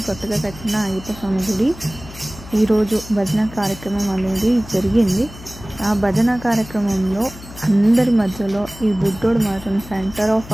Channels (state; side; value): noise; left; hum, 16 dB below the sound